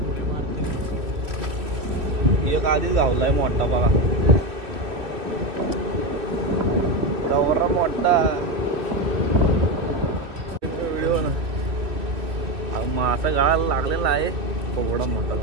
एक आधीच गावलाय मोठा बघा, गौरा मोठा व्हिडिओ ना मासा गळाला लागलेला आहे, एवढा मोठा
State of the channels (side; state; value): left; late; 2.7 ms